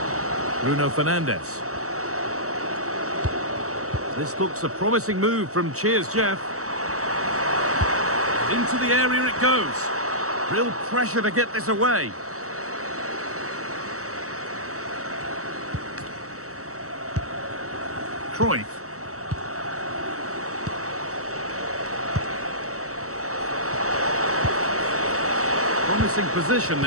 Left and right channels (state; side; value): late; left; 0.65 ms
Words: Bruno Fernandes. This looks a promising move from Jeff. Into the area it goes. Real pressure to get this away. Cruyff. From Promising position,